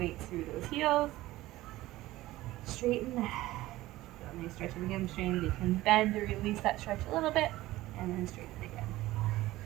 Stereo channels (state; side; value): quieter; left; 17.0 dB